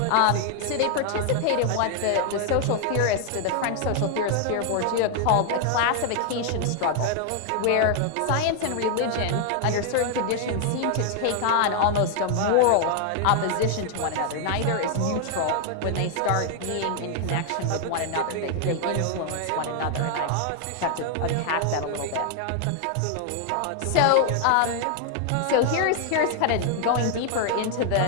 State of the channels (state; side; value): different; both; correlation 0.00